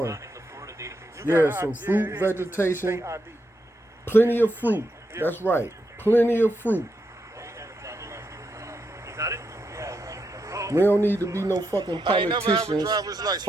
Yeah, some fruit, vegetation, plenty of fruit. That's right, plenty of fruit. We don't need to be no fucking politicians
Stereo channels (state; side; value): normal; both; correlation 0.83